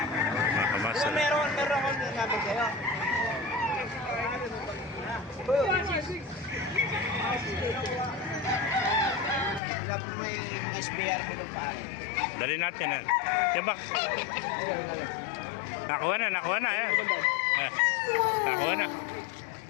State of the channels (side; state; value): right; drops out; at 9.6 s